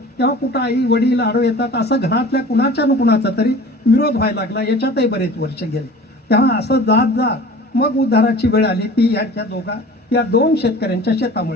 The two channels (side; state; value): both; normal; correlation 0.42